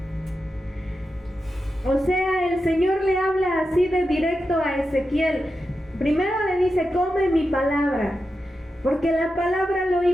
O sea, el Señor le habla así de directo a Ezequiel. Primero le dice, come mi palabra, porque la palabra lo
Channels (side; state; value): both; normal; correlation 0.89